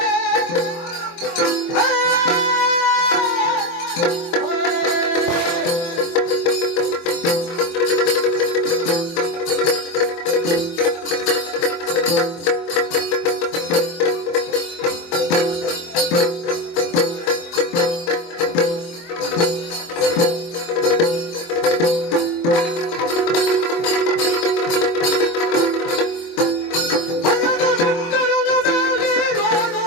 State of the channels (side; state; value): right; late; 24 ms